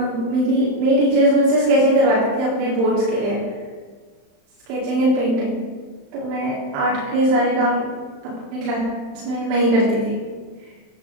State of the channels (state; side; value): late; left; 35 ms